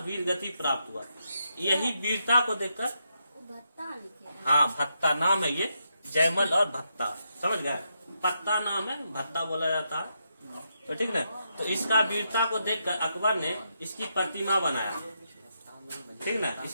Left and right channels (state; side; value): inverted; both; correlation -0.82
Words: वीर गति प्राप्त हुआ। यही वीरता को देखकर, हाँ भत्ता नाम है ये, जयमल और भत्ता, समझ गए? पत्ता नाम है, भत्ता बोला जाता है, तो ठीक ना। तो इसका वीरता को देखकर अकबर ने इसकी प्रतिमा बनाया, ठीक ना।